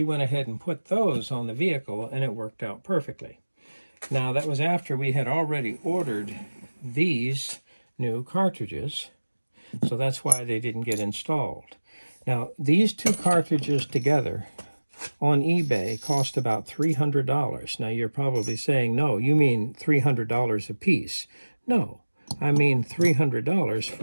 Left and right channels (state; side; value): inverted; both; correlation -1.00